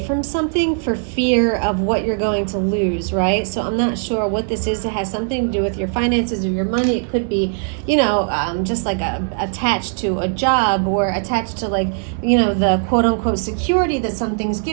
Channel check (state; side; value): silent; left; 66 dB below the other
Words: something for fear of what you're going to lose, right? So I'm not sure what this is. It has something to do with your finances or your money. It could be, just like attached to a job or attached to the quote unquote security that something's